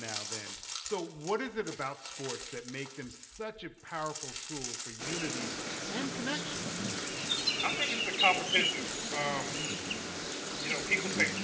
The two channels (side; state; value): both; identical; correlation 1.00